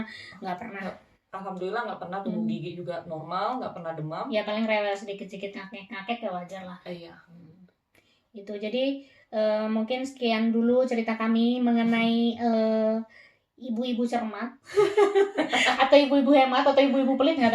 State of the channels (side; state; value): both; identical; correlation 1.00